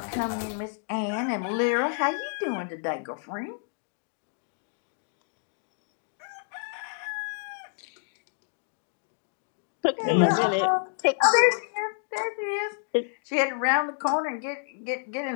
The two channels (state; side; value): silent; right; digital silence